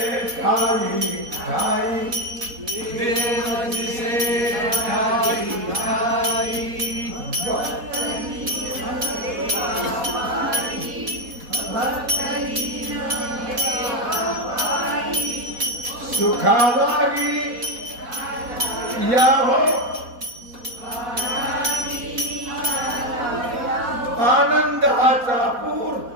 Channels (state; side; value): late; left; 4.1 ms